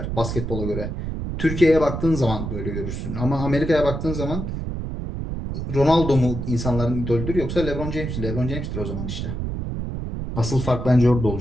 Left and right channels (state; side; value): noise; right; rumble, 4 dB below the sound